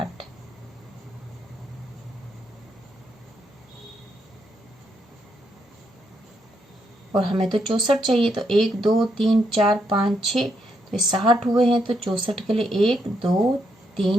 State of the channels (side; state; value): both; normal; correlation 0.77